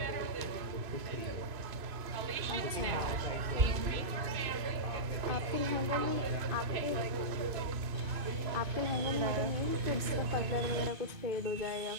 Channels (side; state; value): left; late; 2.6 ms